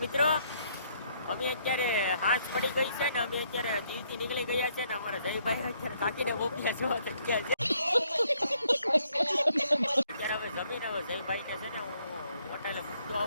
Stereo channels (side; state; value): both; inverted; correlation -0.69